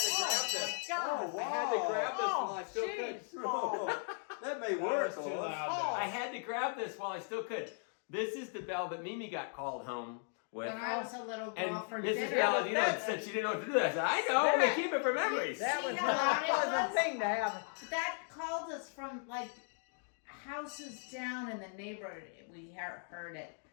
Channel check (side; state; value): right; silent; 53 dB below the other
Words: to grab this. God. I had to grab this Oh, while I still could. jeez. That may work. That was too Lois. loud. I had to grab this while I still could. This is the bell that Mimi got called home with. When I was a little girl And for Mrs. dinner. Palladino said she didn't know what to do. I said, I know, we keep it for memories. That was See not how a loud it pleasant was? thing to have. That called us from like houses down in the neighborhood. We heard it.